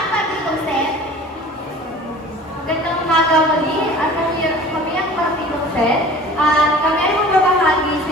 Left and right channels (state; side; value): normal; both; correlation 0.43